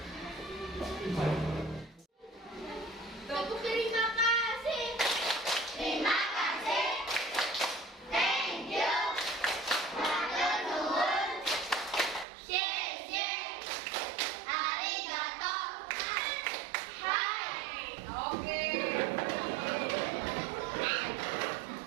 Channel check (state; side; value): drops out; left; at 12.2 s